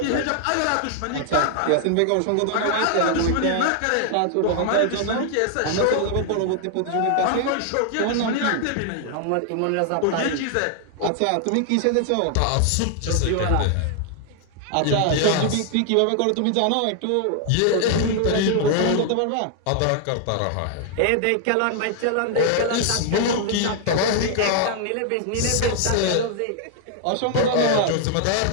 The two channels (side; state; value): both; different; correlation 0.00